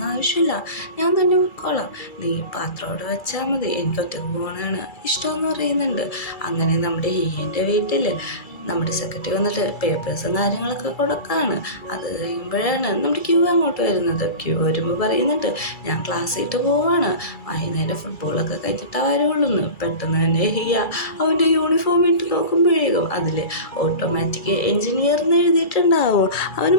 ആവശ്യമില്ല, ഞാൻ തന്നെ പോയിക്കോളാം, നീ പാത്രം അവിടെ വെച്ചാൽ മതി, എനിക്ക് ഒറ്റക്ക് പോകണമാണ് ഇഷ്ടമെന്ന് പറയുന്നുണ്ട്. അങ്ങനെ നമ്മുടെ ഹിയൻ്റെ വീട്ടിൽ നമ്മുടെ സെക്രട്ടറി വന്നിട്ട് പേപ്പേഴ്സും കാര്യങ്ങളൊക്കെ കൊടുക്കാണ്. അത് കഴിയുമ്പോഴാണ് നമ്മുടെ ക്യൂ അങ്ങോട്ട് വരുന്നത്. ക്യൂ വരുമ്പോൾ പറയുന്നുണ്ട്, ഞാൻ ക്ലാസ് ഇട്ട് പോവാണ്, വൈകുന്നേരം ഫുട്ബോളൊക്കെ കഴിച്ചിട്ടാ വരുള്ളൂ എന്ന്. പെട്ടെന്ന് തന്നെ ഹിയ അവൻ്റെ യൂണിഫോം ഇട്ട് നോക്കുമ്പോഴേക്കും അതിൽ ഓട്ടോമാറ്റിക് എഞ്ചിനീയർ എന്ന് എഴുതിയിട്ടുണ്ടാവും. അവന്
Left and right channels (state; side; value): late; right; 2.3 ms